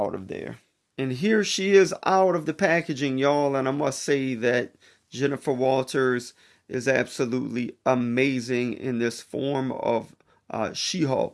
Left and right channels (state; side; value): identical; both; correlation 1.00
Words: of there. And here she is out of the packaging, y'all, and I must say that Jennifer Walters is absolutely amazing in this form of